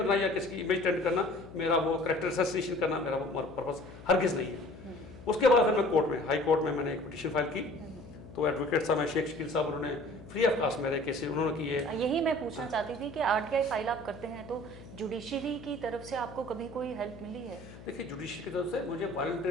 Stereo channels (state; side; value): noise; left; hum, 17 dB below the sound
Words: या किसी की इमेज टेंट करना, मेरा वो कैरेक्टर असैसिनेशन करना मेरा वो पर्पस हरगिज़ नहीं है। उसके बाद फिर मैं कोर्ट में, हाई कोर्ट में मैंने एक पिटीशन फाइल की, तो एडवोकेट साहब हैं शेख शकील साहब, उन्होंने फ्री ऑफ कास्ट मेरे केसेस उन्होंने किए। यही मैं पूछना चाहती थी कि RTI फाइल आप करते हैं तो जुडिशरी की तरफ से आपको कभी कोई हेल्प मिली है? देखिए जुडिशरी की तरफ से मुझे